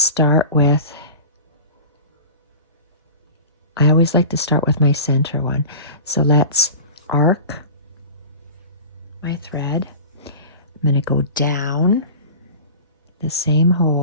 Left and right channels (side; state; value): both; inverted; correlation -0.35